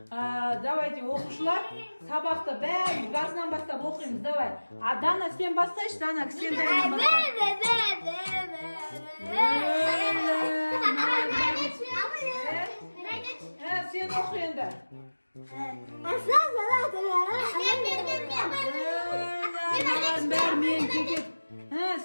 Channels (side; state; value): both; inverted; correlation -1.00